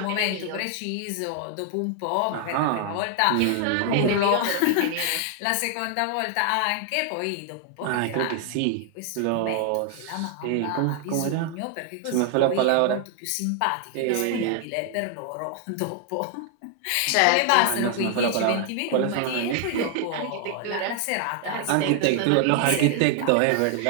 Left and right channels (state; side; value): different; both; correlation 0.00